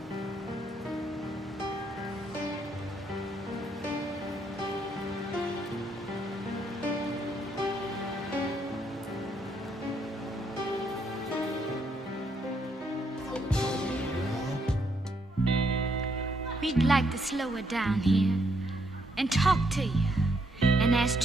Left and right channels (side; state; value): both; normal; correlation 0.73